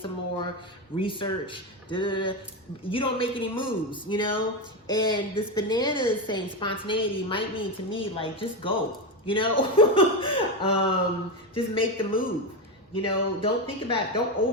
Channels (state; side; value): normal; both; correlation 0.13